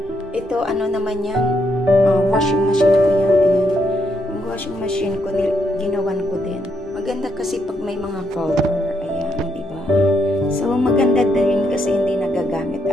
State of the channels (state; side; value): normal; both; correlation 0.76